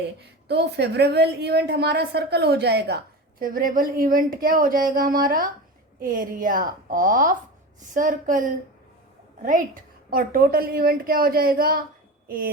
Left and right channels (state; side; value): normal; both; correlation 0.28